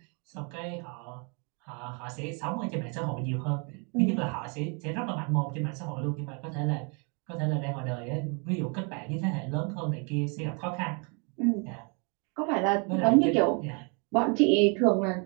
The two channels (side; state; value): left; quieter; 35.1 dB